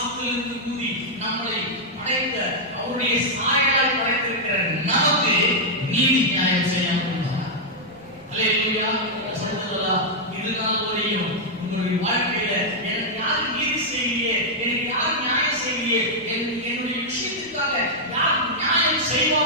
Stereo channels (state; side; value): noise; right; rumble, 29 dB below the sound